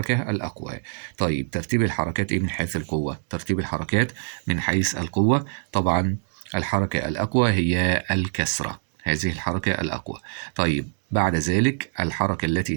الأقوى. طيب ترتيب الحركات إيه من حيث القوة؟ ترتيب الحركات من حيث القوة طبعا الحركة الأقوى هي الكسرة، هذه الحركة الأقوى. طيب بعد ذلك الحركة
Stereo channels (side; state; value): left; silent; digital silence